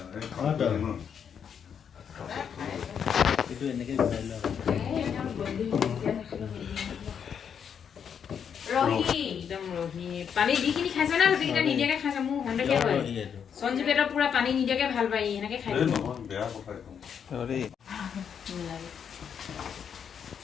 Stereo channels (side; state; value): right; quieter; 7.6 dB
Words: ৰহি একদম ৰহি পানী দিখিনি খাইছ না গোটেইকেইটা নিদিয়াকে খাইছ মোৰ সন্দেহ হয় সঞ্জীৱ এটা পুৰা পানী নিদিয়াকে ভাল পায় এনেকে খাই